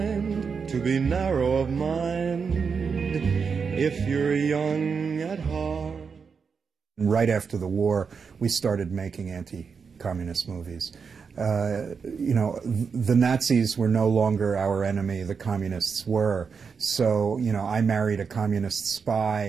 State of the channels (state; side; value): quieter; left; 5.7 dB